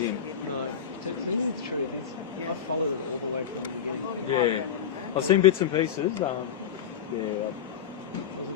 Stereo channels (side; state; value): right; quieter; 8.1 dB